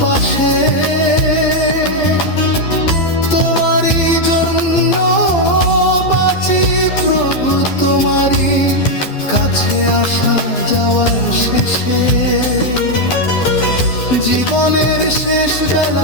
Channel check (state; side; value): late; right; 12 ms